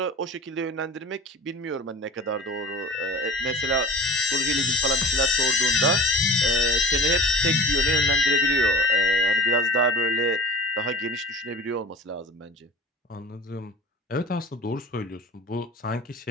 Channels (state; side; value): normal; both; correlation 0.38